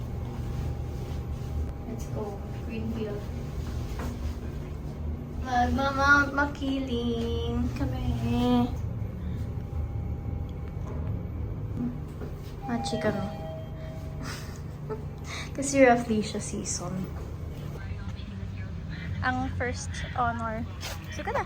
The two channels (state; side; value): identical; both; correlation 1.00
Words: Let's go. Greenfield. Magmamount Makiling kami. Machi kami. Kasi roughly siya season. Ang first honor. Sige